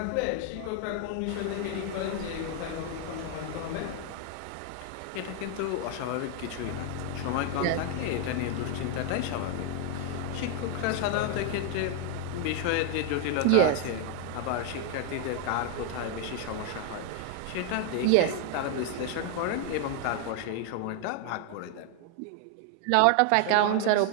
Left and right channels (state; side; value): different; both; correlation 0.01